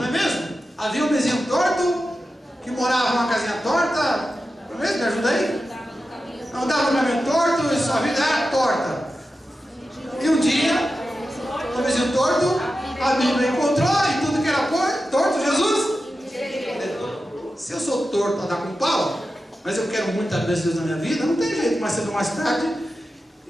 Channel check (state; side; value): normal; both; correlation 0.92